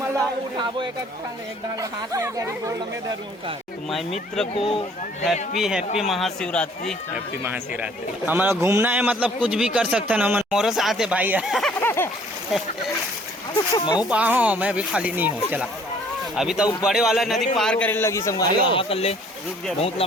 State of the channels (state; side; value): normal; both; correlation 0.57